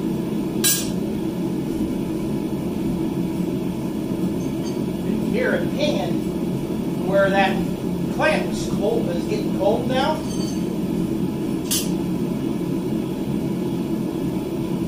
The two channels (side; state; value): both; identical; correlation 1.00